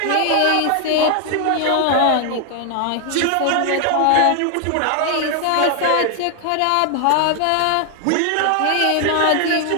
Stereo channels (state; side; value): different; both; correlation 0.00